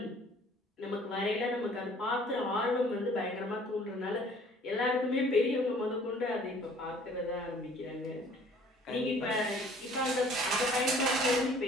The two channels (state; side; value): normal; both; correlation 0.54